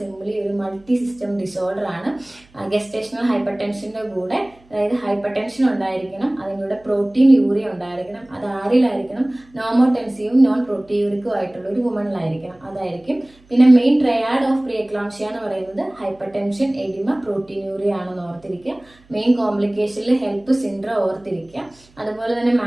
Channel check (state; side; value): noise; right; hum, 29 dB below the sound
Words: ഒരു മൾട്ടി സിസ്റ്റം ഡിസോർഡർ ആണ്. ഗസ്റ്റേഷണൽ ഹൈപ്പർ ടെൻഷന്റെ കൂടെ, അതായത് ഹൈപ്പർ ടെൻഷൻ ഉണ്ടായിരിക്കണം, അതിൻ്റെ കൂടെ പ്രോട്ടീൻ യൂറിയ ഉണ്ടായിരിക്കണം. അത് ആരിലായിരിക്കണം, നോമോടെൻസീവും നോൺ പ്രോട്ടീയൂറിക്കും ആയിട്ടുള്ള ഒരു വുമണിലായിരിക്കണം. അതായിരിക്കും. പിന്നെ main triad of pre eclampsia എന്ന് പറയുന്നത് hypertension, oedema, protein urea ആണെന്ന് ഓർത്തിരിക്കുക. മെയിൻ കോംപ്ലിക്കേഷനിൽ ഹെൽപ്പ് സിൻഡ്രോം ഓർത്തിരിക്കുക. അതുപോലെ തന്നെ